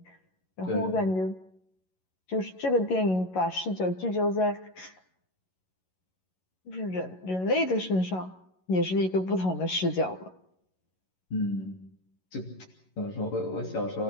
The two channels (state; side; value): late; right; 11 ms